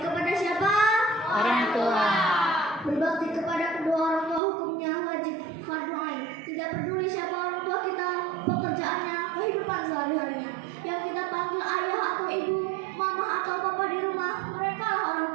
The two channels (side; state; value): left; drops out; at 4.4 s